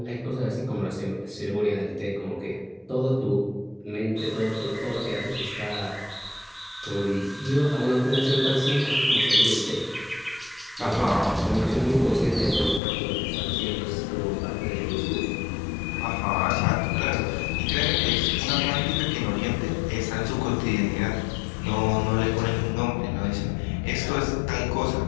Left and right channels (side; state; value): right; drops out; at 12.8 s